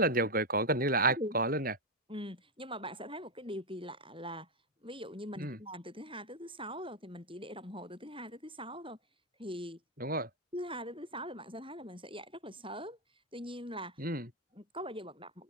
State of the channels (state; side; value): normal; both; correlation 0.00